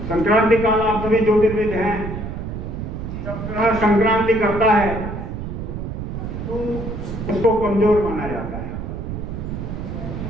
संक्रांति काल, आप सभी ज्योतिर्विद हैं, जब संक्रांति करता है तो उसको कमजोर माना जाता है।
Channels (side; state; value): right; noise; rumble, 6 dB below the sound